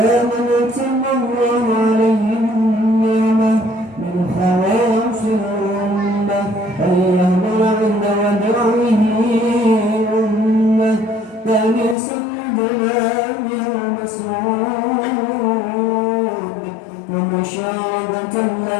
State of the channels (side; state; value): right; drops out; at 12.0 s